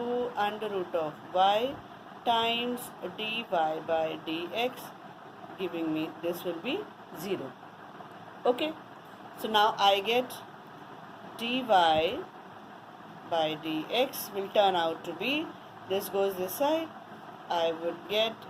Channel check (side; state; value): both; identical; correlation 1.00